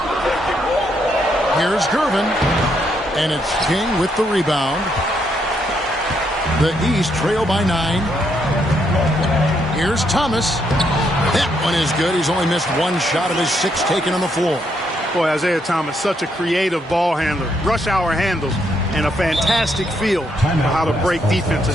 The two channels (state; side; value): normal; both; correlation 0.75